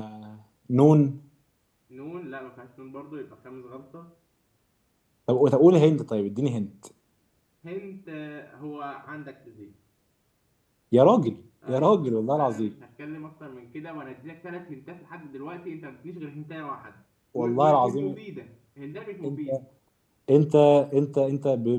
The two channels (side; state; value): both; identical; correlation 1.00